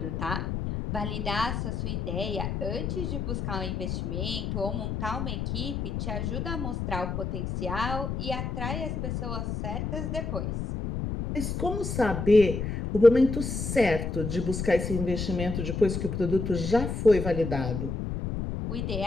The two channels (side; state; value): left; noise; rumble, 3 dB below the sound